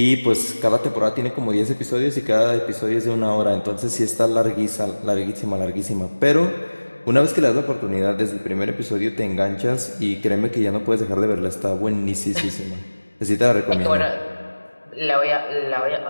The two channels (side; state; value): both; inverted; correlation -1.00